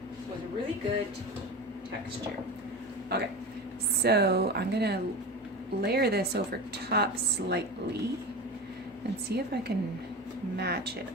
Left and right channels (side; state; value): both; normal; correlation 0.27